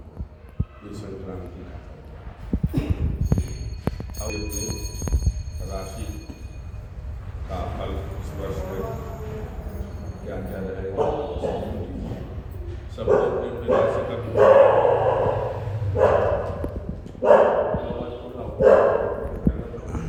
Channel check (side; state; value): both; identical; correlation 1.00